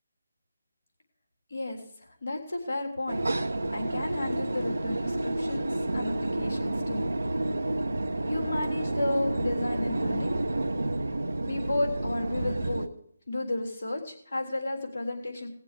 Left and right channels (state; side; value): inverted; both; correlation -0.95